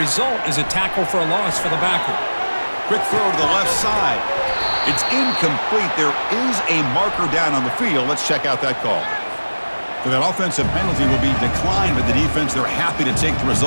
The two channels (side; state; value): both; inverted; correlation -1.00